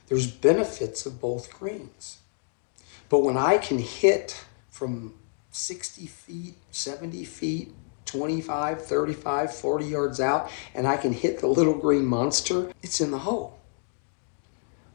There's benefits of both greens. But when I can hit from 60 feet, 70 feet, 25, 35, 40 yards out, and I can hit the little green monster, it's in the hole.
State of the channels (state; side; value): silent; right; 60 dB below the other